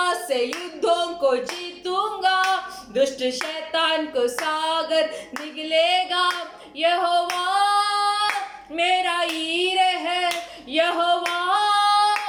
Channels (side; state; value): both; identical; correlation 1.00